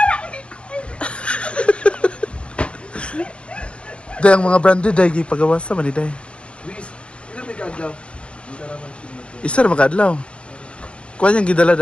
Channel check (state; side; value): late; right; 0.059 ms